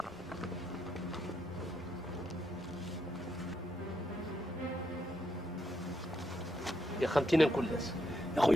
يا خمتينا نكون لاس يا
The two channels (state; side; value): normal; both; correlation 0.79